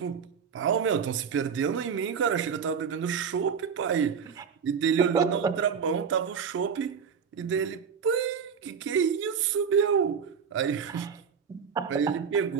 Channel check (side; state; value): left; quieter; 6.7 dB